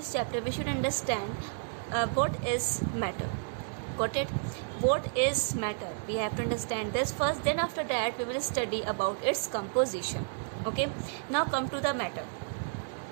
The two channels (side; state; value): left; silent; digital silence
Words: chapter, we should understand what is matter. Got it? What is matter? We have to understand this first, then after that we will study about its composition. Okay, now come to the matter.